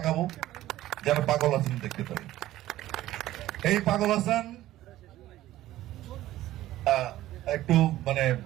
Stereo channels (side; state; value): left; quieter; 14.8 dB